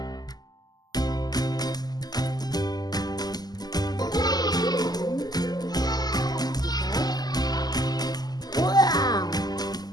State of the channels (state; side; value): late; right; 0.20 ms